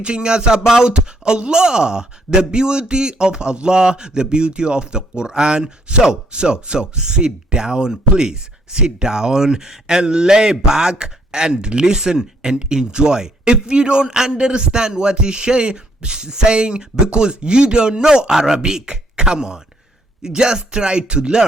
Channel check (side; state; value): both; normal; correlation 0.67